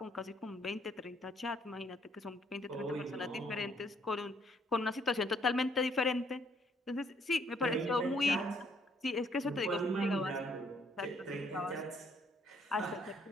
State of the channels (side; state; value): both; normal; correlation 0.67